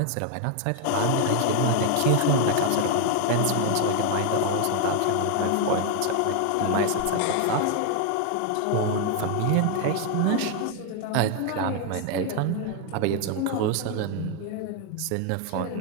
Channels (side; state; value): both; different; correlation 0.00